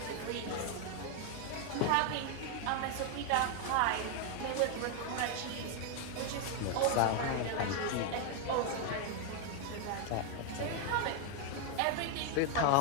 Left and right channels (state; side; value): different; both; correlation 0.01